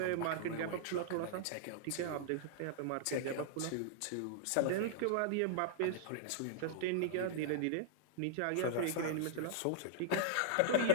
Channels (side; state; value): both; different; correlation -0.01